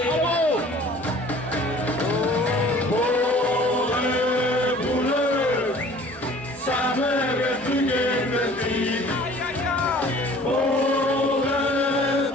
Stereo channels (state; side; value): normal; both; correlation 0.49